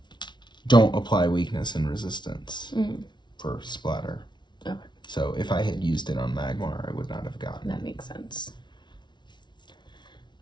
Don't apply weakness and resistance for Splatter. Okay. So if I had used it on Magmar, I would not have gotten it. That makes sense.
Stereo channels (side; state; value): right; late; 0.22 ms